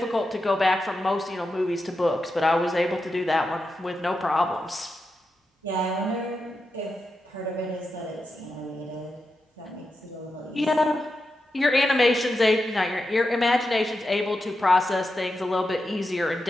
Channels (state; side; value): normal; both; correlation 0.88